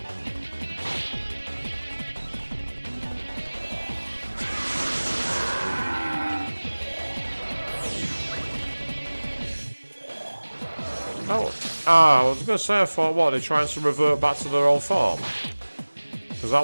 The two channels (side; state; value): both; inverted; correlation -1.00